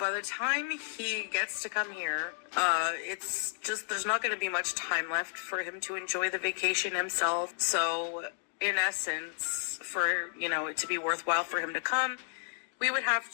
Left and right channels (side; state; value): right; silent; digital silence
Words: the time he gets to come here, it's just, there's not going to be much time left for him to enjoy the vacation himself. So in essence, for, you know, it to be worthwhile for him to come, we would have